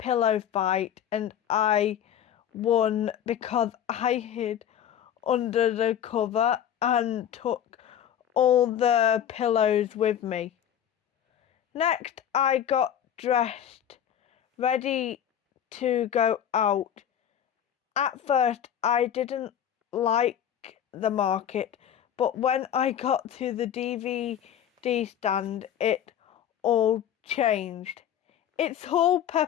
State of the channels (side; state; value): right; quieter; 9.7 dB